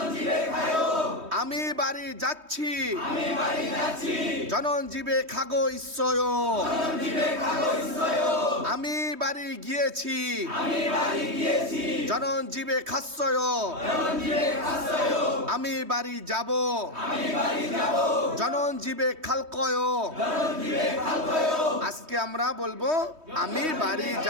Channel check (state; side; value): late; left; 3.2 ms